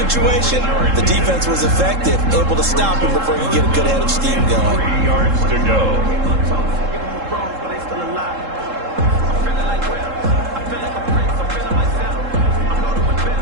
the defense was effective, able to stop him before he could get a good head of steam going. 3 yards to go.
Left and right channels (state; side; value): late; left; 3.7 ms